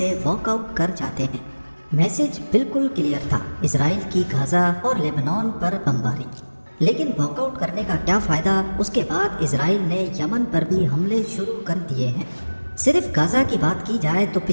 वॉकआउट कर जाते हैं। मैसेज बिल्कुल क्लियर था, इजराइल की गाजा और लेबनान पर बमबारी। लेकिन वॉकआउट करने का क्या फ़ायदा, उसके बाद इजराइल ने यमन पर भी हमले शुरू कर दिए हैं। सिर्फ गाजा की बात की जाए तो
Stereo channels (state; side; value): inverted; both; correlation -1.00